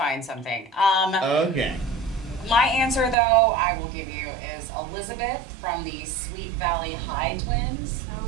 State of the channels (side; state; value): left; drops out; at 3.2 s